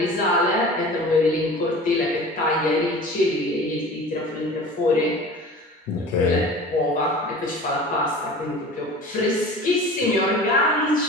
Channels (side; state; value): both; normal; correlation 0.39